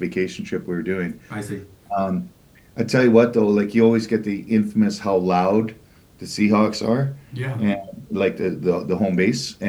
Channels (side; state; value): both; identical; correlation 1.00